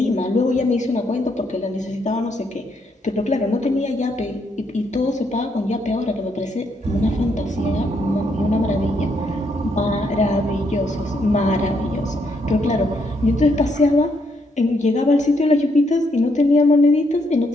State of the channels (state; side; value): normal; both; correlation 0.75